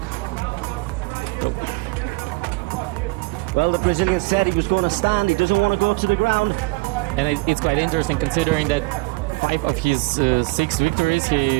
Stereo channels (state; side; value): quieter; left; 25.4 dB